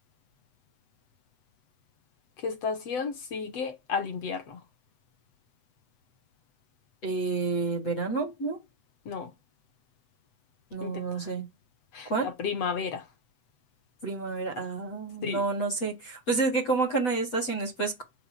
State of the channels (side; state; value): right; late; 8.0 ms